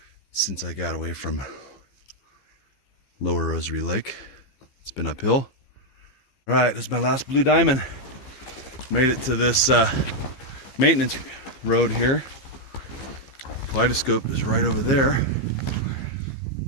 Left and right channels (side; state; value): right; late; 15 ms